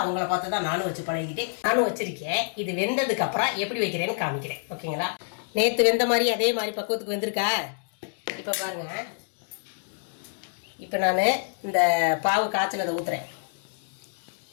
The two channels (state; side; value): silent; right; digital silence